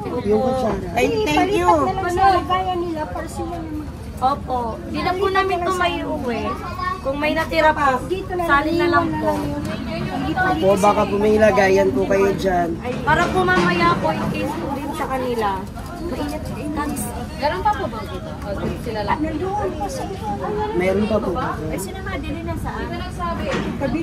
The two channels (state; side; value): identical; both; correlation 1.00